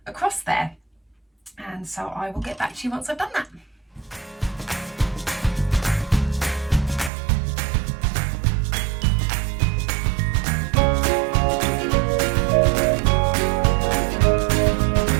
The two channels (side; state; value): left; drops out; at 7.1 s